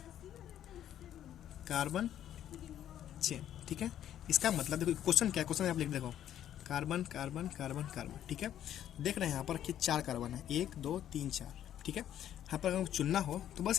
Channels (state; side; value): quieter; right; 11.0 dB